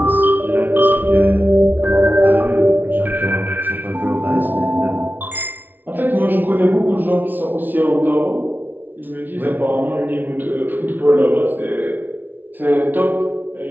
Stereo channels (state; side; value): late; left; 0.088 ms